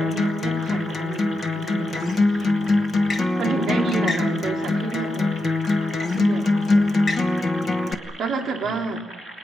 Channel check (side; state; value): both; normal; correlation 0.87